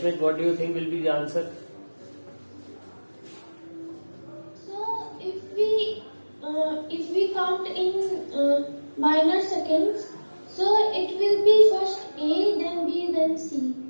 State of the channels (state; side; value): inverted; both; correlation -1.00